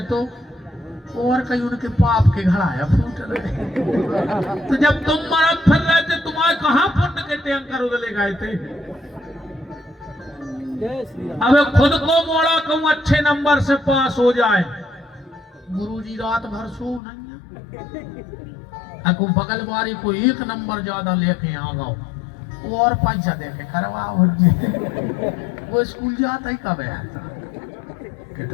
तो और कहीं उनके पाप के घड़ा फूट रहे। तो जब तुम मरद फिर रहे थे, तुम्हारे कहाँ पुण्य के टैंकर उदले गए थे। अब खुद को मोड़ा कहूं अच्छे नंबर से पास हो जाए, गुरुजी रात भर सो नहीं, अको बगल वाली को 1 नंबर ज्यादा लेके आ गओ और पैसा दे के करवाओ। वो स्कूल जाता ही कब है,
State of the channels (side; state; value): right; drops out; at 17.0 s